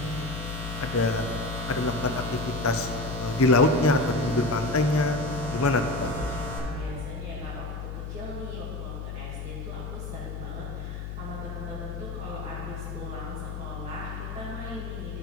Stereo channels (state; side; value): noise; left; hum, 6 dB below the sound